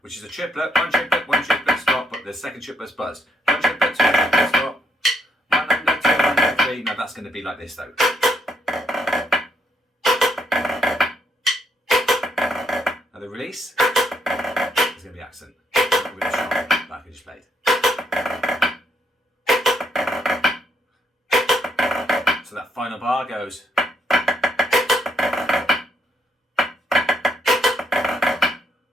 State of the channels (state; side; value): normal; both; correlation 0.74